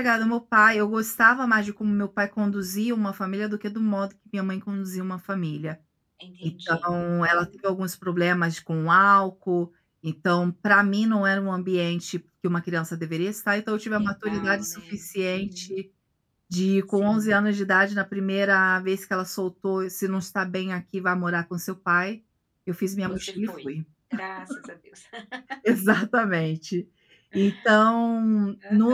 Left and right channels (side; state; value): both; identical; correlation 1.00